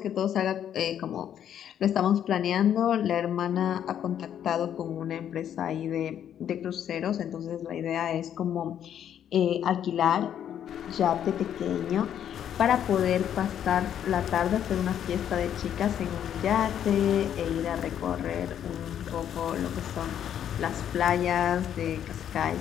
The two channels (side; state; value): right; quieter; 9.8 dB